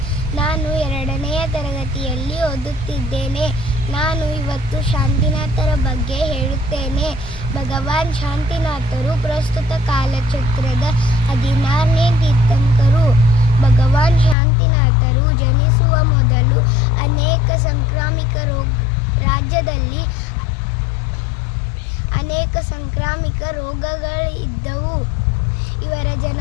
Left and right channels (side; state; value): right; drops out; at 14.4 s